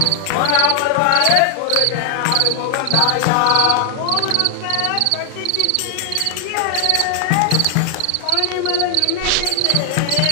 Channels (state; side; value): different; both; correlation 0.00